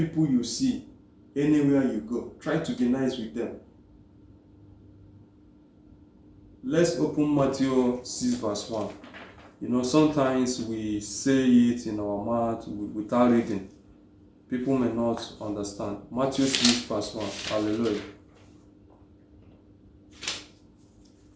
you see anywhere you go. Try to be nice with them. Let's open Matthew 6 verse 1. Sometimes we say it in our mouth without reading. People may not understand. Matthew 6 verse 1. Hallelujah.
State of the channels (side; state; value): both; identical; correlation 1.00